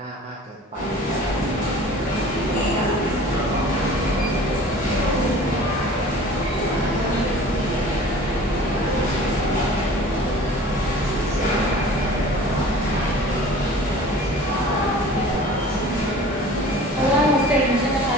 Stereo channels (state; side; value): normal; both; correlation 0.44